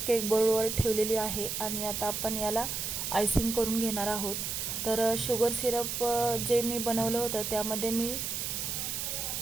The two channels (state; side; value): noise; right; hiss, 3 dB below the sound